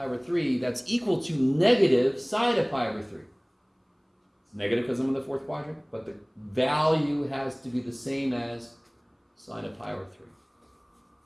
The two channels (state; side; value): identical; both; correlation 1.00